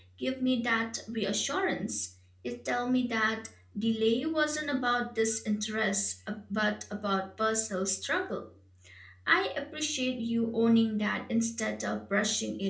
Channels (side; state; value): both; identical; correlation 1.00